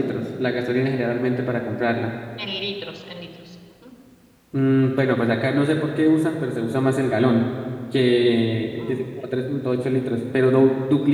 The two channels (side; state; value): both; identical; correlation 1.00